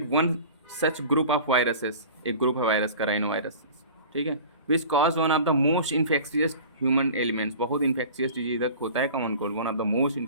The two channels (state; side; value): inverted; both; correlation -0.40